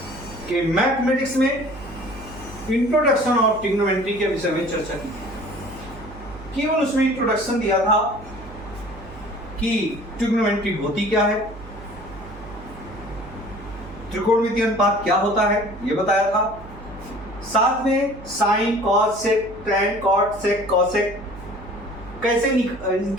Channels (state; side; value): noise; right; hum, 16 dB below the sound